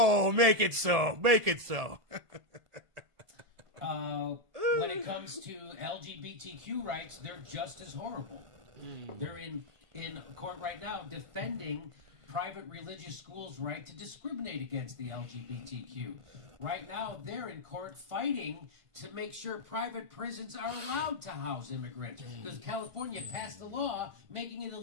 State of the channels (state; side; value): late; left; 1.5 ms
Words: make it so. Make it so. When it comes to LGBTQ rights, they're just as horrible. They're in in court right now defending private religious schools' right to discriminate against the LGBTQ. Right now, they're in court fighting to make sure private prisons are allowed to house immigrants. Because California passed a law making it